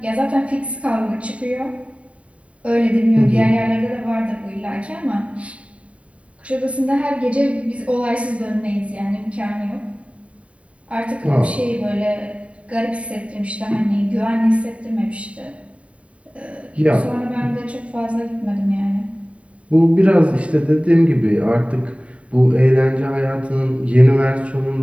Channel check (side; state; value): left; late; 0.064 ms